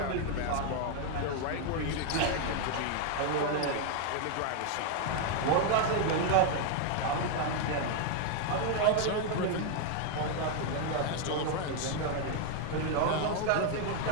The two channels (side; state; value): both; different; correlation 0.00